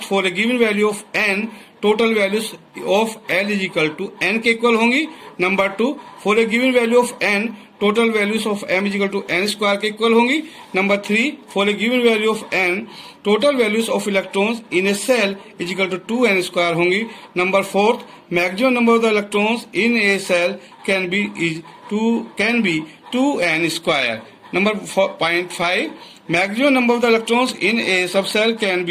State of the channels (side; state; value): both; identical; correlation 1.00